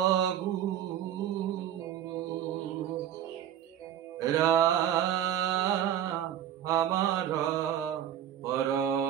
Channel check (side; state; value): left; quieter; 10.5 dB